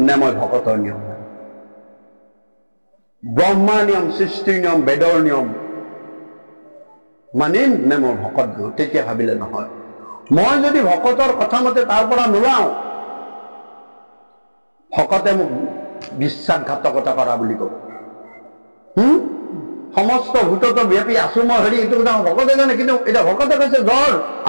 নে মই ভকতৰ নিয়ম মানিম? ব্ৰহ্মাৰ নিয়ম, সৃষ্টিৰ নিয়ম, বেদৰ নিয়ম মানিম নে মই ভকত দিওঁ? তেতিয়া ভাবিলে নহয়, মই যদি ভকতৰ কথা মতে তাৰ পৰা নোলাওঁ, ভকতে মোক বিশ্বাসঘাতকতা কৰা বুলি ক'ব। সমস্ত ভূতত ব্যাপী আছো মই হেৰি, এইটো কথা ভকতে জানে, কিন্তু এতিয়া ভকতে কৈছে জ্বৰ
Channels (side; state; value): both; inverted; correlation -1.00